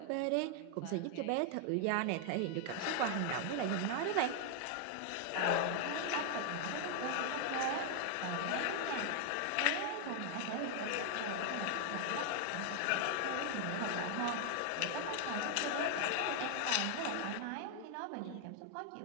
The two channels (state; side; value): different; both; correlation 0.00